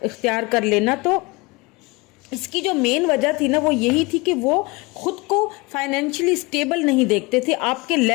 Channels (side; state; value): right; quieter; 25.1 dB